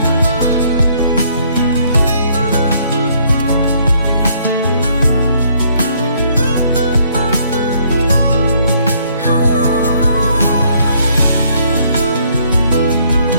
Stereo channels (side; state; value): both; inverted; correlation -0.67